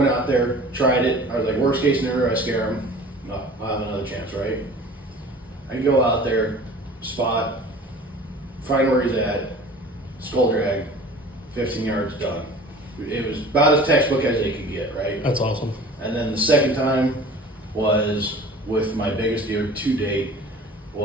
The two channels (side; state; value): both; normal; correlation 0.44